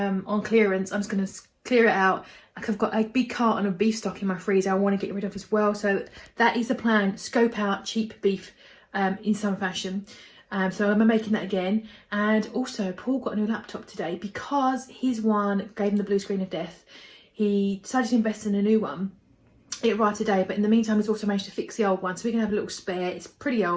clearance, I'm just going to clear it out. Like, I've got a big carton of beef stock in my freezer I want to get rid of as well. So that is the plan. Scope out cheap beef in some fashion. So I'm making that again. And also Paul got a new laptop today because his one gave him the blue screen of death. He decided to invest in a new one. It arrived today, but in the meantime he's also managed to fix the old one. So we're going to have a little spare. It's pretty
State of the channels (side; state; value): both; identical; correlation 1.00